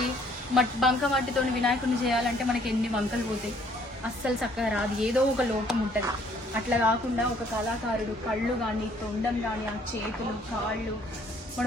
బంక వాటితో వినాయకుడిని చేయాలంటే మనకి ఎన్ని వంకలు పోతాయి, అస్సలు చక్కగా రాదు, ఏదో ఒక లోపం ఉంటది. అట్లా కాకుండా ఒక కళాకారుడు కళ్ళు గాని, తొండం గాని, ఆ చేతులు, కాళ్ళు,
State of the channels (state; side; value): normal; both; correlation 0.62